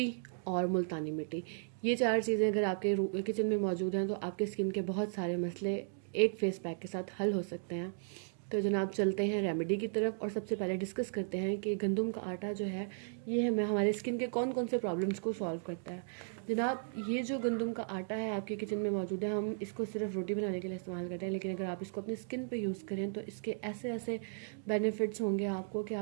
और मुल्तानी मिट्टी। ये चार चीज़ें अगर आपके किचन में मौजूद हैं तो आपके स्किन के बहुत सारे मसले एक फेस पैक के साथ हल हो सकते हैं। तो जनाब, चलते हैं रेमेडी की तरफ और सबसे पहले डिस्कस करते हैं कि गंदम का आटा जो है ये हमें हमारे स्किन के कौन कौन से प्रॉब्लम्स को सॉल्व करता है। जनाब, ये जो गंदम का आटा है आपके किचन में मौजूद है, हम इसको सिर्फ रोटी बनाने के लिए इस्तेमाल करते हैं, लेकिन अगर आप इसको अपनी स्किन पे यूज़ करें तो इसके ऐसे ऐसे बेनिफिट्स होंगे आपको कि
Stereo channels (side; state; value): left; silent; digital silence